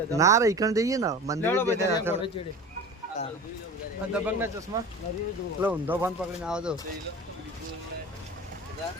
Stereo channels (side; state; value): both; normal; correlation 0.35